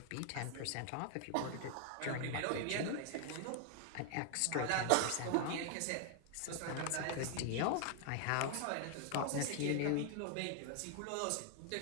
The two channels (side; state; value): both; different; correlation 0.00